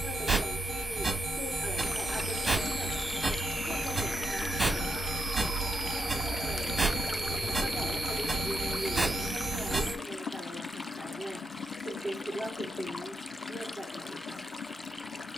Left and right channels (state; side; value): normal; both; correlation 0.83